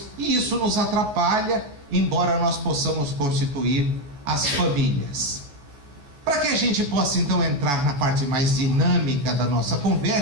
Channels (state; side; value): late; left; 14 ms